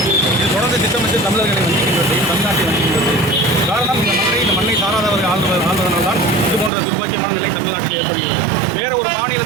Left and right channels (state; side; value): drops out; left; at 6.7 s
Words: இது தொடர்ந்து திட்டமிட்டு தமிழர்களை வஞ்சிக்கின்றது, தமிழ்நாட்டை வஞ்சிக்கின்றது. காரணம் இந்த மண்ணை சாராதவர்கள் ஆள்வதனால் தான் இது போன்ற துர்பாக்கியமான நிலை தமிழ்நாட்டில் ஏற்படுகிறது. வேற ஒரு